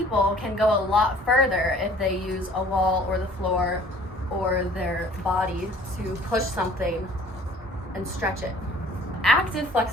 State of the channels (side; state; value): both; normal; correlation 0.53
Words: can go a lot further if they use a wall or the floor or their body to push something and stretch it. Active